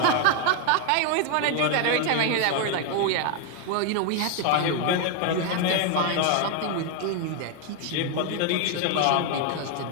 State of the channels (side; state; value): both; different; correlation 0.01